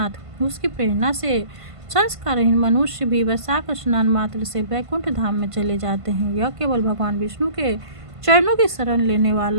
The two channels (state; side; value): late; left; 1.5 ms